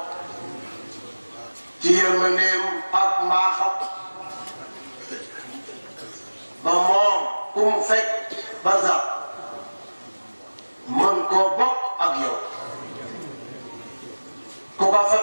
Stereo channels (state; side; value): inverted; both; correlation -1.00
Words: ci yërmandeem ak mbaaxam ba moom ku mu fekk ba sax mën koo bokk ak yow ku ko fa